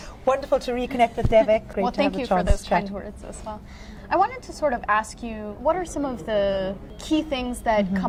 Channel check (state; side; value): identical; both; correlation 1.00